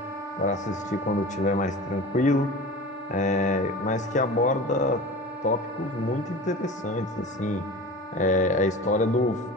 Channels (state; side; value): normal; both; correlation 0.35